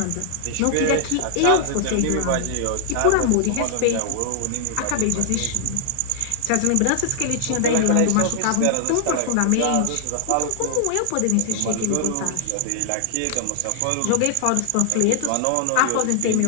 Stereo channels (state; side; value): different; both; correlation 0.00